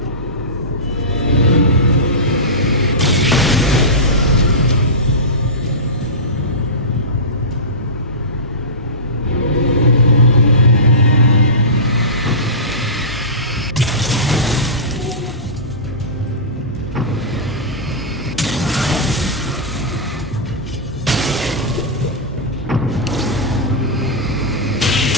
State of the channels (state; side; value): normal; both; correlation -0.19